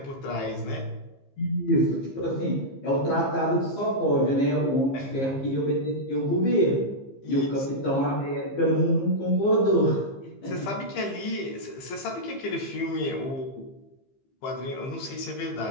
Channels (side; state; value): right; late; 15 ms